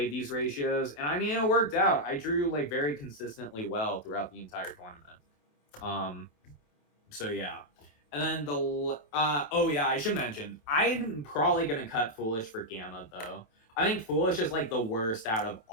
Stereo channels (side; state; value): right; late; 27 ms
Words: these ratios, and I mean it worked out. I drew like very consistently well throughout the entire tournament. So yeah. And then oh yeah, I should mention I'm probably gonna cut Foolish for Gamma though. I think Foolish is like the worst out of